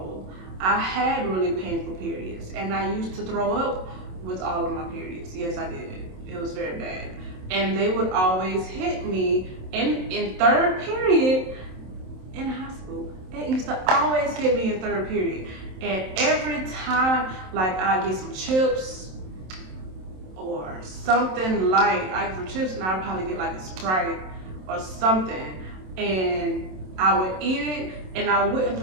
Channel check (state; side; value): late; left; 27 ms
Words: I had really painful periods, and I used to throw up with all of my periods. Yes, I did. It was very bad. And they would always hit me in third period in high school. It used to always hit me in third period. And every time, like, I get some chips or something light, I get some chips and I'd probably get like a Sprite or something. And I would eat it and I wouldn't